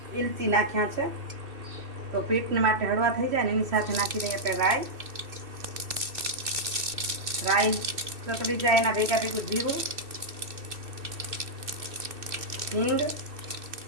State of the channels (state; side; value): late; left; 2.7 ms